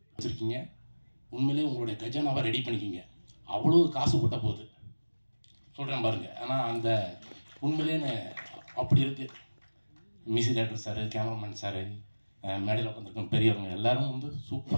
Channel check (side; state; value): both; inverted; correlation -1.00